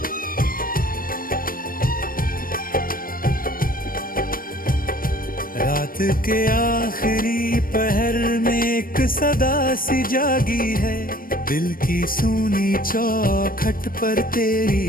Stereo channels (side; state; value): right; late; 0.41 ms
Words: रात के आखिरी पहर में एक सदा सी जागी है, दिल की सूनी चौखट पर